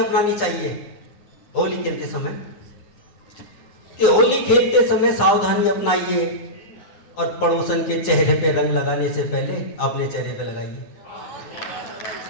चाहिए होली खेलते समय, कि होली खेलते समय सावधानी अपनाइए और पड़ोसन के चेहरे पे रंग लगाने से पहले अपने चेहरे पे लगाइए।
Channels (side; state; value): right; late; 9.8 ms